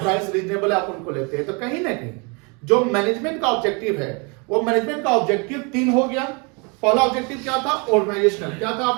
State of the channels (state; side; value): quieter; left; 32.0 dB